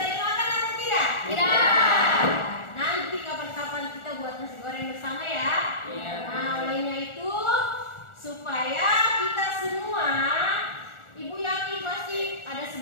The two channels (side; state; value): right; late; 1.4 ms